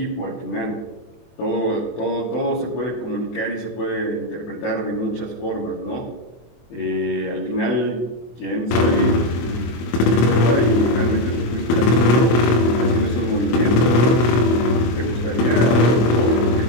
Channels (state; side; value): late; right; 24 ms